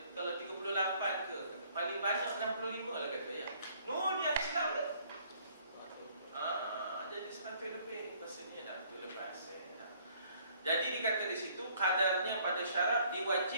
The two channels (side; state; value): both; inverted; correlation -0.61